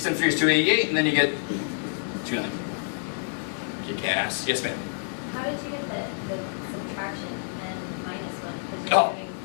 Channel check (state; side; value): silent; right; digital silence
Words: times 3 is 288, and then you get 290. Kick ass. Yes, ma'am. How did you get the subtraction and minus 1? Oh,